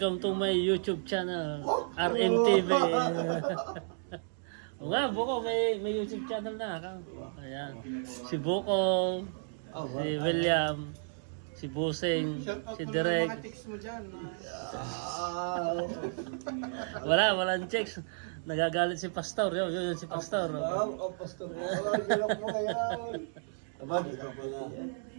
to my YouTube channel, RMTV. O nga, Buko, may YouTube channel na. Ayan. Si Buko, si William, si Busing, si Direk. Mga tics mo dyan. Walang checks. Nagagalit si Pastor. Yun si Pastor. Pastor. Gilok mo ngayon. Abad ka pala.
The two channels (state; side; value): silent; left; digital silence